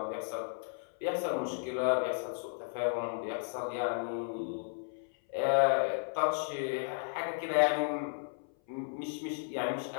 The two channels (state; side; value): silent; right; 55 dB below the other